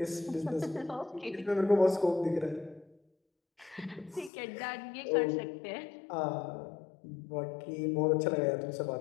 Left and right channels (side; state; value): right; drops out; at 4.3 s